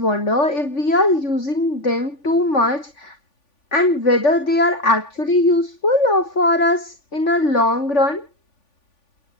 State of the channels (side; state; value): right; late; 3.5 ms